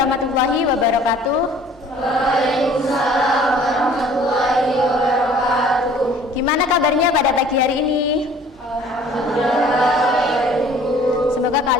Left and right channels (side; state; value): both; normal; correlation 0.52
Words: wabarakatuh. Waalaikumsalam warahmatullahi wabarakatuh. Gimana kabarnya pada pagi hari ini? Alhamdulillah. Semoga